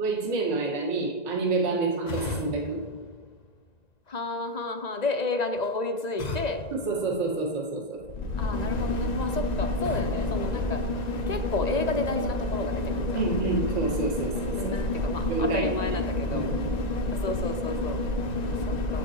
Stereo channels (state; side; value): late; right; 1.9 ms